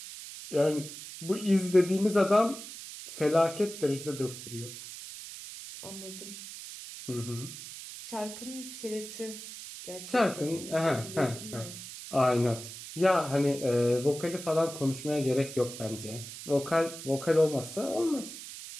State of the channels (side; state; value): right; noise; hiss, 12 dB below the sound